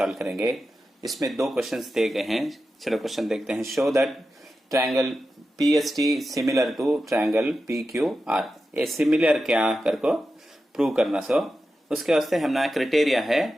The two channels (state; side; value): normal; both; correlation 0.91